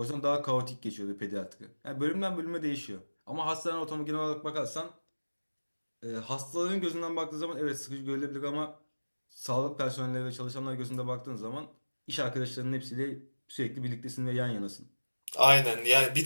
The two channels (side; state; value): both; inverted; correlation -1.00